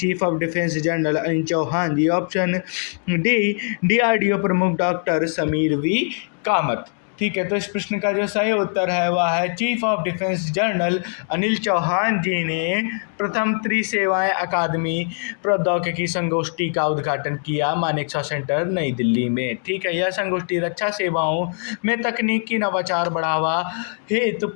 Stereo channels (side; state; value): right; silent; 55 dB below the other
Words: of defence general Anil Chauhan ji, option D DRDO प्रमुख डॉक्टर समीर वी कामत। ठीक है, तो इस प्रश्न का जो सही उत्तर है वह है chief of defence general Anil Chauhan ji ने प्रथम त्रिसेवाएं अकादमी प्रौद्योगिकी संगोष्ठी का उद्घाटन किया मानेकशॉ सेंटर नई दिल्ली में। ठीक है, यह संगोष्ठी रक्षा सेवाओं में तकनीकी नवाचार बढ़ावा हेतु